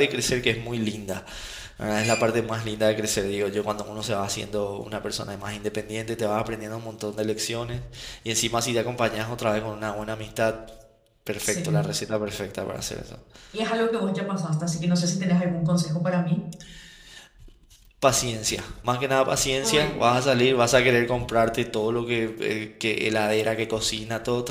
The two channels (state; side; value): identical; both; correlation 1.00